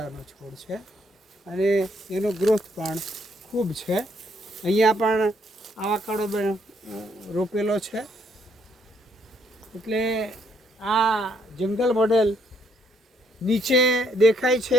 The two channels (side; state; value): both; normal; correlation 0.70